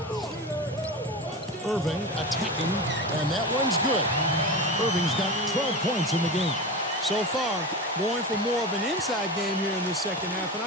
Irving attacking, and that one's good. Irving's got 12 points in the game. So far, going for more of an inside game here in this second half, and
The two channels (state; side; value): normal; both; correlation 0.25